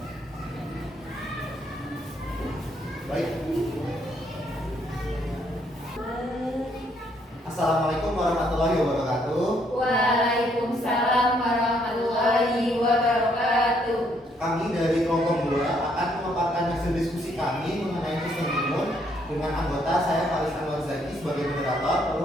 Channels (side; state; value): both; normal; correlation 0.70